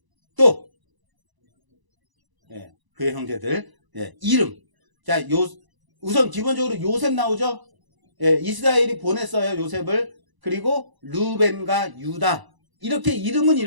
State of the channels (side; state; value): left; late; 1.0 ms